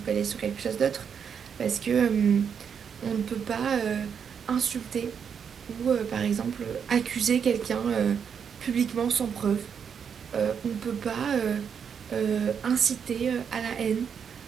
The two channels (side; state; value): left; quieter; 7.2 dB